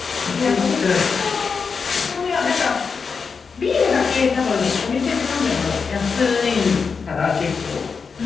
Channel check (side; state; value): right; quieter; 5.4 dB